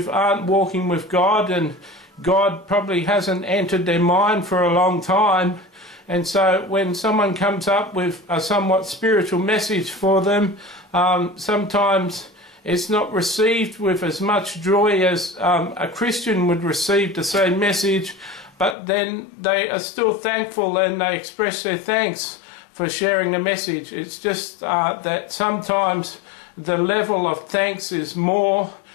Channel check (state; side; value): drops out; right; at 18.8 s